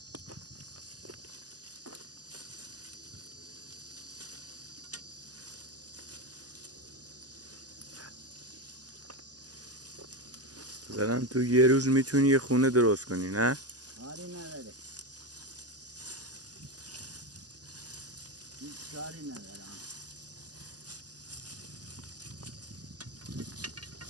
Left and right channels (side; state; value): left; late; 0.68 ms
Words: مثلا تو یه روز میتونی یه خونه درست کنی نه؟ کاری نداره هیچ کاری نداره